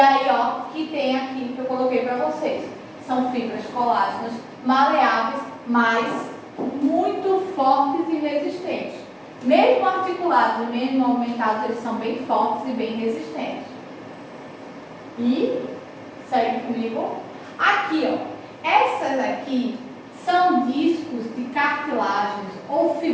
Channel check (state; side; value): identical; both; correlation 1.00